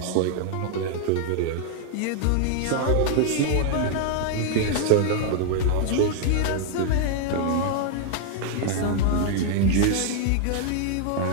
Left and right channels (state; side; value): different; both; correlation 0.00